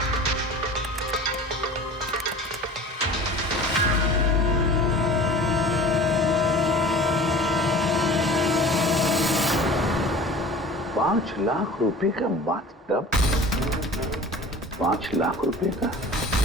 ₹5,00,000 का बाथटब, 5 लाख रुपए का।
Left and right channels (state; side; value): normal; both; correlation 0.41